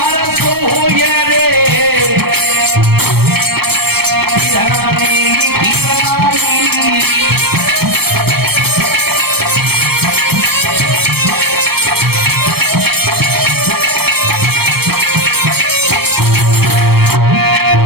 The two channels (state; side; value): late; left; 0.96 ms